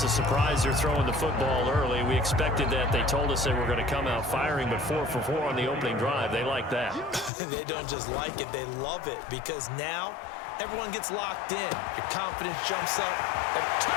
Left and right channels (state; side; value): drops out; right; at 7.3 s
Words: a surprise they're throwing the football early. We expected that. They told us they were going to come out firing, but 4 for 4 on the opening drive. They like that. They don't just like it. They love it, because now everyone gets locked in. Your confidence jumps up. And